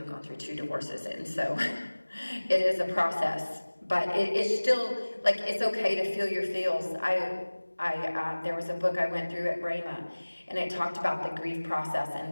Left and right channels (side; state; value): both; inverted; correlation -1.00